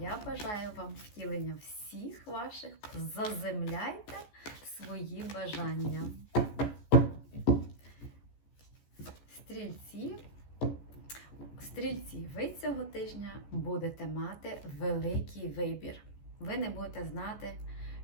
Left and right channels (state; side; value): late; right; 14 ms